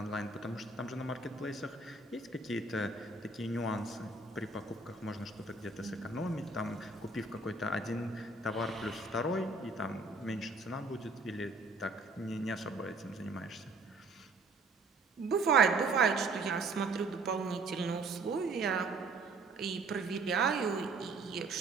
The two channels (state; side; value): quieter; left; 3.4 dB